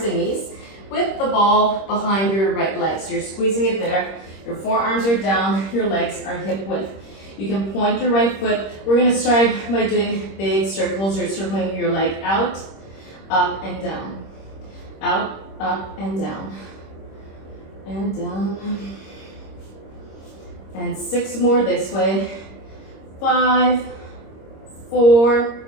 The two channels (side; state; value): right; late; 26 ms